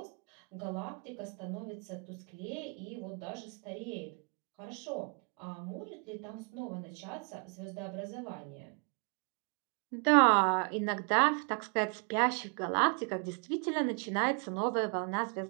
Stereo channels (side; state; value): left; quieter; 37.4 dB